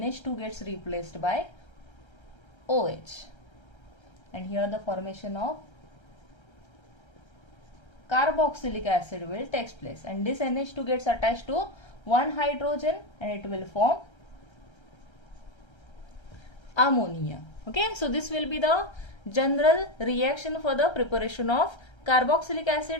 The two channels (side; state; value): right; late; 1.3 ms